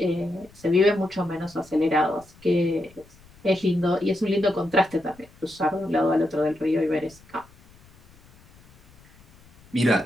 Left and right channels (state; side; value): noise; left; rumble, 27 dB below the sound